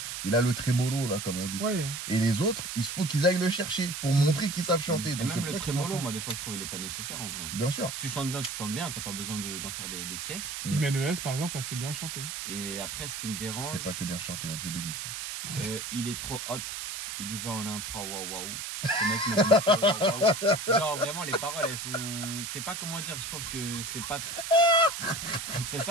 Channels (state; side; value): noise; right; hiss, 6 dB below the sound